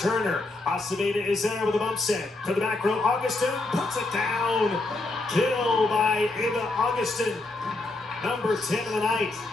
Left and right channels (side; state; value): right; quieter; 3.0 dB